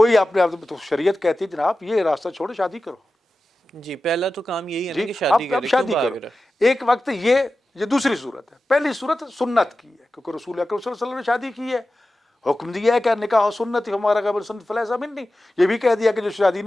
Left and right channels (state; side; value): normal; both; correlation 0.94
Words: اپنے آپ تو شریعت کہتی ہے جناب یہ راستہ چھوڑو، شادی کرو. جی پہلا تو کام یہی ہے نا جی کہ شادی اب کرے، کیوں شادی بھاگ کرو. رہا؟ ایک وقت یہ دوسری صورت ہے. پہلی صورت سنت کی ہے کیونکہ رسول اکرم صلی اللہ علیہ وسلم نے شادی کی ہے، حکم دیا ہے کہ نکاح سنت ہمارا قبل سنت فلیس منی. یہ بھی کہہ دیا کہ جو شادی